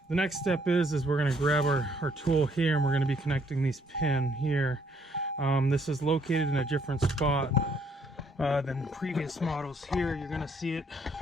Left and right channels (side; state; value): both; normal; correlation 0.68